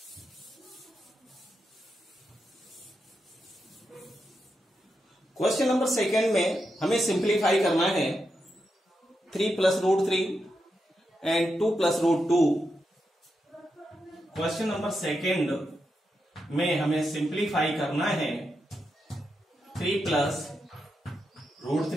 क्वेश्चन नंबर सेकेंड में हमें सिंप्लीफाई करना है 3 plus root 3 and 2 plus root 2। Question number second में हमें सिंप्लीफाई करना है 3 plus root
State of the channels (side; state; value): both; normal; correlation 0.86